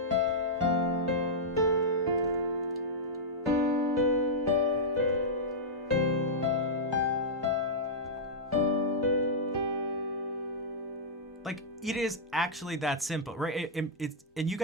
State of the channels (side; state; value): both; normal; correlation -0.10